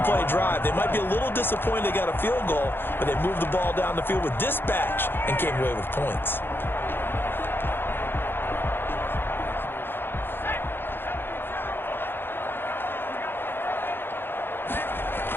drive. They might be a little disappointed they got a field goal, but they moved the ball down the field with dispatch and came away with points.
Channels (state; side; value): late; right; 0.10 ms